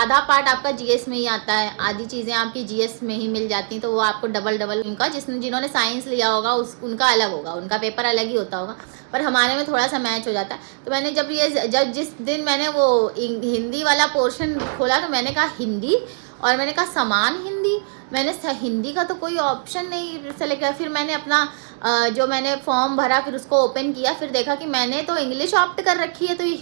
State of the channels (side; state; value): left; silent; digital silence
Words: पार्ट आपका जीएस में ही आता है, आधी चीज़ें आपकी जीएस में ही मिल जाती हैं, तो वो आपको डबल उनका जिन्होंने साइंस लिया होगा उनका अलग होगा, उनका पेपर अलग ही होता होगा, पर हमारे में थोड़ा सा मैच हो जाता है। तो मैंने जब जिस दिन मैंने वो हिंदी वाला पोर्शन खोला, तो मैंने कहा हिंदी, और मैंने कहा समान हिंदी, मैंने हिंदी का तो कोई ऑप्शन नहीं सेलेक्ट किया। फिर मैंने अपना जो मैंने फॉर्म भरा, फिर उसको ओपन किया, फिर देखा कि मैंने तो इंग्लिश ऑप्ट कर रखी है, तो ये